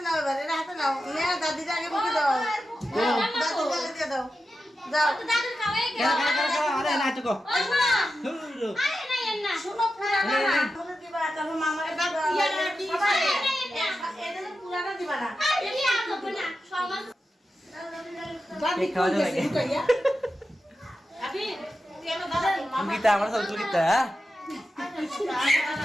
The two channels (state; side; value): normal; both; correlation 0.91